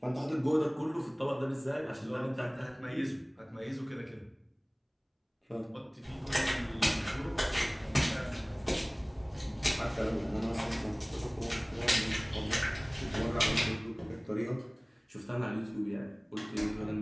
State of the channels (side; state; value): both; identical; correlation 1.00